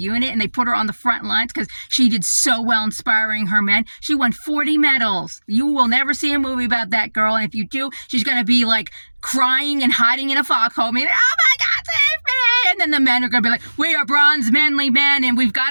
and they put her on the front lines because she did so well inspiring her men. She won 40 medals. You will never see a movie about that girl, and if you do, she's going to be like crying and hiding in a foxhole, being like, oh my God, save me! And then the men are going to be like, we are bronze manly men, and we've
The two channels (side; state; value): both; inverted; correlation -1.00